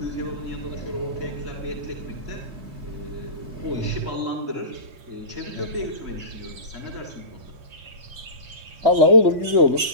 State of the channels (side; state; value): left; late; 3.2 ms